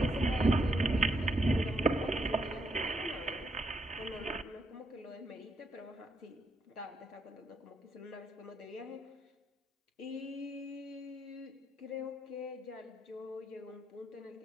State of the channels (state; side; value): normal; both; correlation 0.77